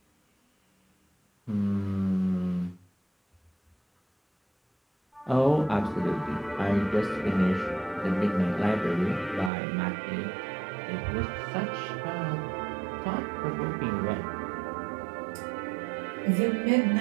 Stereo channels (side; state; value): left; drops out; at 9.5 s